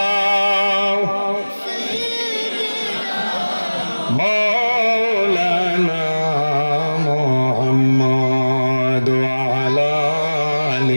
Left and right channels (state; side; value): inverted; both; correlation -1.00